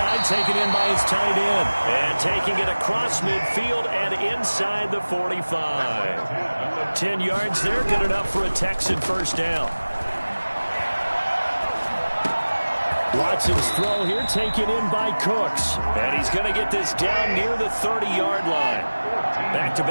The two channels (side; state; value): both; inverted; correlation -1.00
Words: taken in by his tight end. And taking it across midfield and inside the 45. 10 yards there, good enough for a Texan first down. Watson's throw here taken in by Cooks. And he's going to get this down near the 30-yard line.